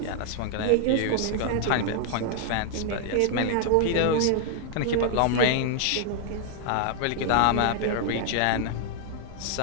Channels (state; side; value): different; both; correlation 0.00